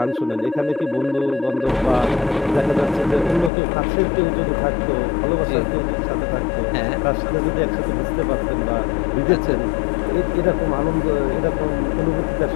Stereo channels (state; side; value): drops out; right; at 3.5 s